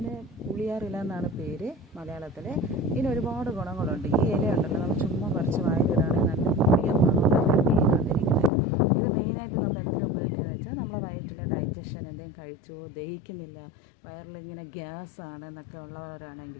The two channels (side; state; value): right; drops out; at 8.5 s